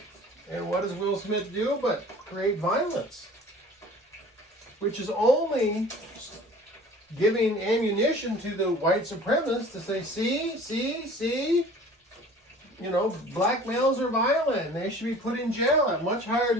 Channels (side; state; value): both; normal; correlation 0.46